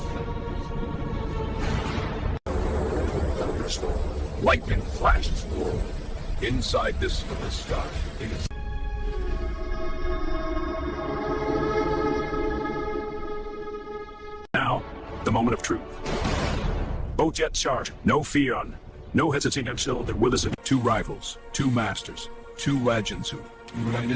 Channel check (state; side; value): identical; both; correlation 1.00